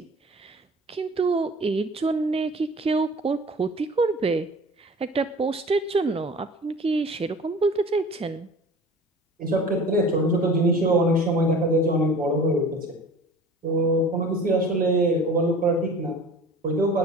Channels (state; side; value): normal; both; correlation 0.42